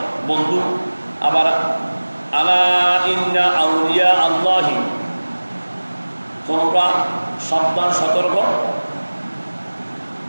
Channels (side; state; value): both; inverted; correlation -1.00